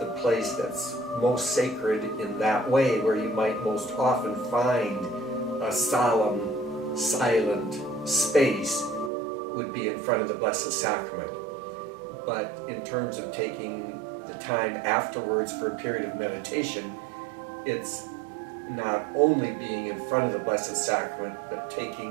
place that's most sacred in that way, where you might most often find a solemn, silent space, would be in front of the Blessed Sacrament. But in terms of taking the time afterwards for a period of meditation, it's not only being in front of the Blessed Sacrament, but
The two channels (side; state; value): left; drops out; at 9.1 s